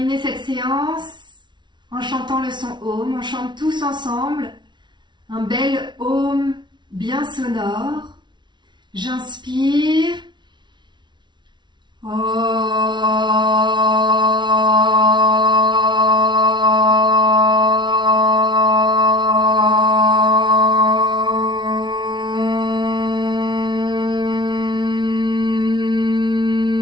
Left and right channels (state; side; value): late; left; 0.22 ms